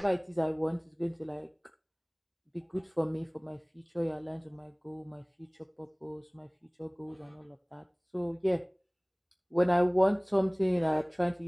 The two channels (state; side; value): identical; both; correlation 1.00